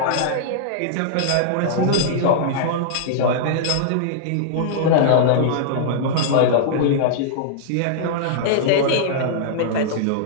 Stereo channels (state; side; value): different; both; correlation -0.02